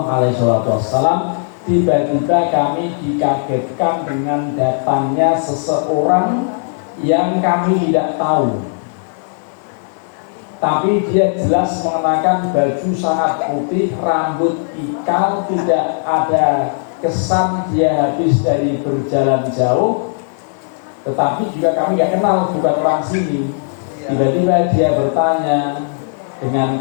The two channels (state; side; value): silent; right; 64 dB below the other